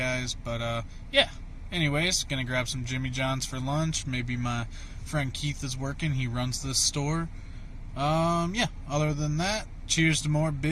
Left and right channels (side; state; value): both; identical; correlation 1.00